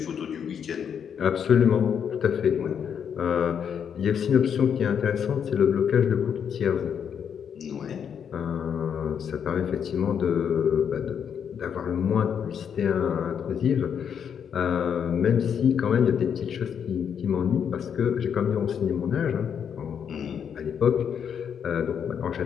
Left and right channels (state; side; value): quieter; right; 7.8 dB